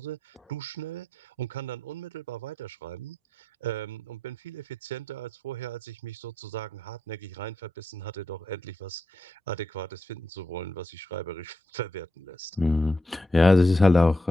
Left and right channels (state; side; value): normal; both; correlation 0.83